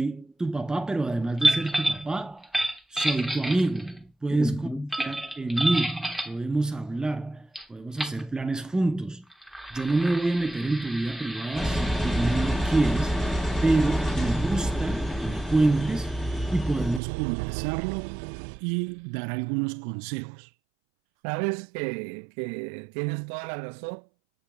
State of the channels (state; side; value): drops out; left; at 17.0 s